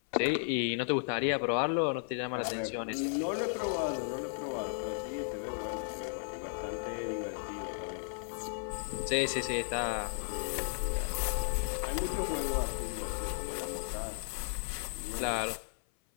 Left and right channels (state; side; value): silent; right; 55 dB below the other